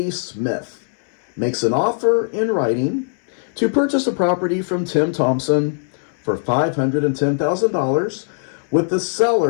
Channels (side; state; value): right; silent; 66 dB below the other